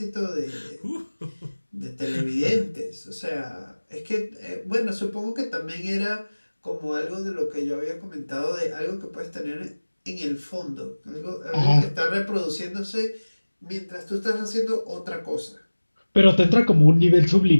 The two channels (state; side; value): inverted; both; correlation -1.00